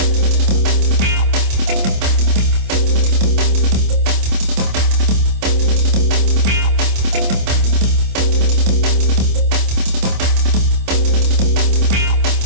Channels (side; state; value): left; late; 26 ms